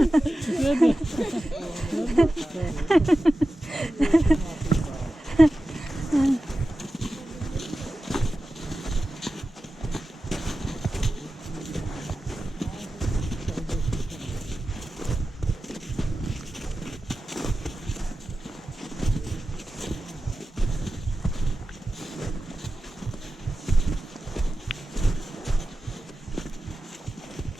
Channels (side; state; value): both; normal; correlation 0.94